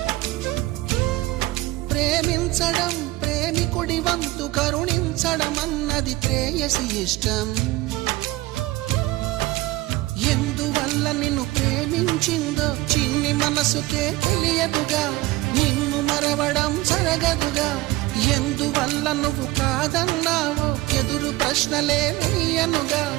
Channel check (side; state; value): left; quieter; 19.1 dB